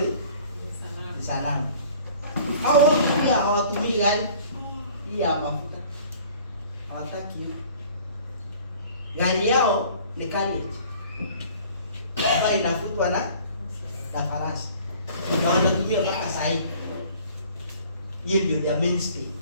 sanamu. Hao wote pia hawatumii gari hii ya mafuta. Hawataki hiyo. Gari yao ni carriage ambayo inafutwa na farasi. Na wanatumia mpaka saa hii. Hiyo ndio their mainstay.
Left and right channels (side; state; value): both; inverted; correlation -0.50